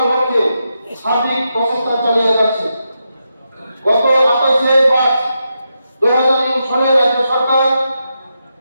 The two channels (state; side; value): inverted; both; correlation -0.86